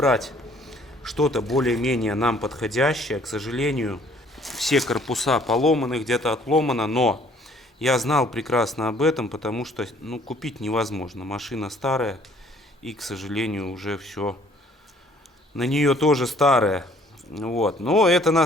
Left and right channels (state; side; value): normal; both; correlation 0.59